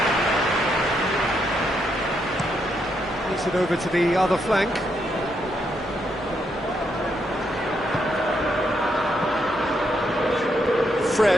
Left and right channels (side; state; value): both; normal; correlation 0.78